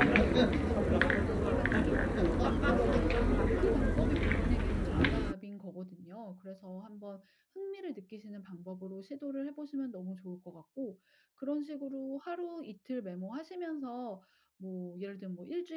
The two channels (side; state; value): both; identical; correlation 1.00